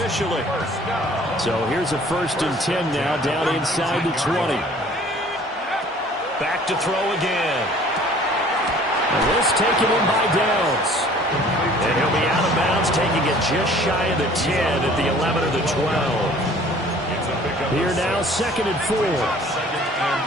So here's a 1st and 10 now, down inside the 20. Back to throw again. And this taken in by Downs. And he'll be out of bounds, taking it just shy of the 10 at the 11 or the 12. Here now, 2nd and 4.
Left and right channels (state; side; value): normal; both; correlation 0.52